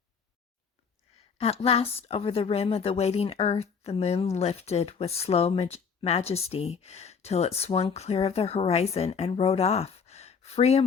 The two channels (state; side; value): quieter; right; 6.0 dB